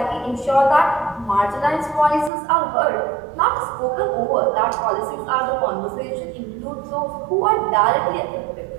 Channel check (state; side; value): drops out; left; at 2.3 s